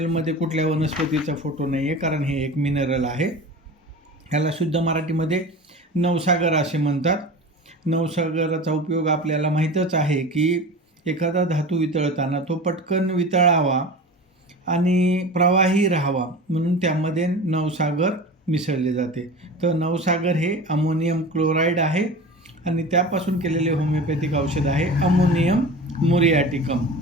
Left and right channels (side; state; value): both; normal; correlation 0.33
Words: कुठल्या वनस्पतीचा फोटो नाही आहे, कारण हे एक मिनरल आहे. ह्याला शुद्ध मराठीमध्ये नवसागर असे म्हणतात. नवसागराचा उपयोग आपल्याला माहीतच आहे की एखादा धातू वितळताना तो पटकन वितळावा आणि प्रवाही राहावा म्हणून त्यामध्ये नवसागर मिसळले जाते. तर नवसागर हे अमोनियम क्लोराईड आहे आणि त्यापासून केलेले होमिओपॅथिक औषध आहे अमोनियम मुरियाटिकम